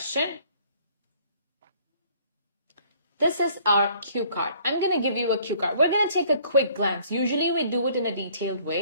This is our cue card. I'm going to give you a cue card. We're going to take a quick glance. Usually we do it in a detailed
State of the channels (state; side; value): inverted; both; correlation -0.58